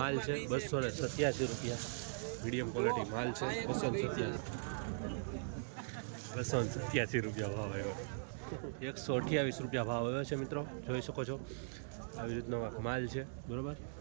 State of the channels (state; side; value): silent; left; digital silence